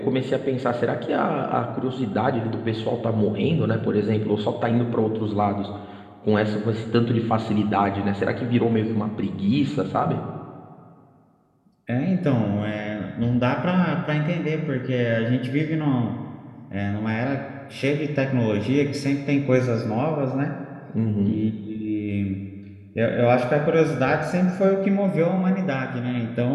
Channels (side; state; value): both; identical; correlation 1.00